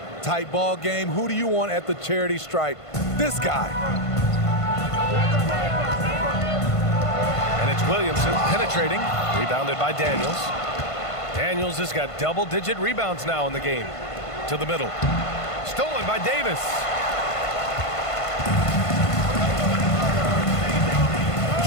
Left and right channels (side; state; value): right; late; 1.5 ms